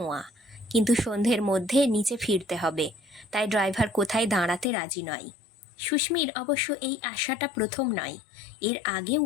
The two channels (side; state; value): right; drops out; at 4.7 s